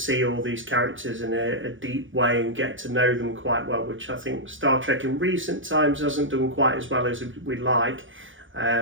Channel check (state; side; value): late; left; 0.57 ms